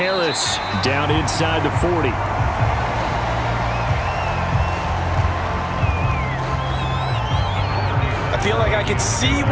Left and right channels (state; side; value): identical; both; correlation 1.00